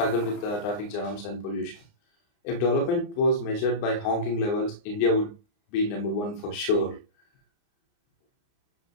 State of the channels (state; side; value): late; right; 29 ms